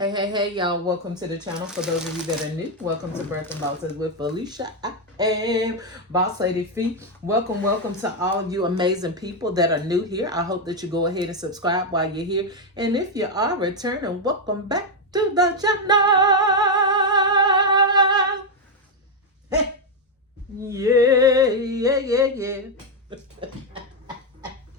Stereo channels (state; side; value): normal; both; correlation 0.03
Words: Hey, hey, hey, y'all. Welcome to the channel. For those of you that are new, welcome to Birth and Bosses with Felicia. I am Boss Lady Fee. Welcome, welcome to all of you amazing people that are new here. I hope that you go ahead and subscribe while you're here. And if you are returning, welcome back to the channel. Hey. Yeah.